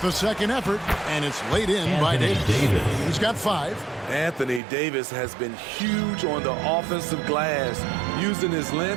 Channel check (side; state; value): left; drops out; at 4.6 s